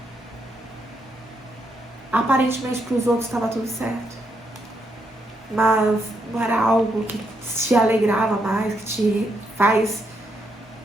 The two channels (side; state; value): both; normal; correlation 0.78